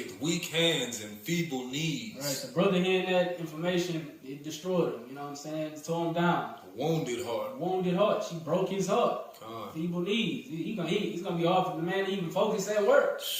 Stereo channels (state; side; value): identical; both; correlation 1.00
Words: weak hands and feeble knees. Right, the brother hearing that information, it destroyed him. You know what I'm saying? It tore him down. A wounded heart. Wounded heart. She broke his heart. God. Feeble knees. It's gonna be hard for the man to even focus at work.